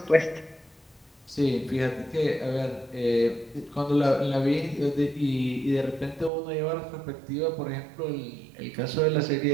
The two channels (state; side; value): drops out; left; at 6.3 s